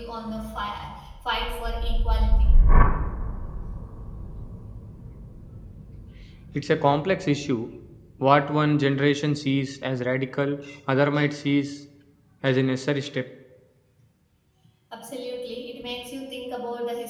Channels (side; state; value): both; identical; correlation 1.00